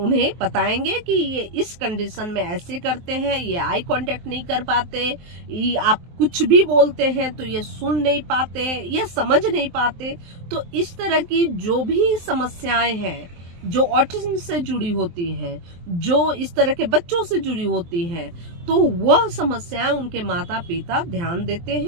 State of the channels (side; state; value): left; late; 23 ms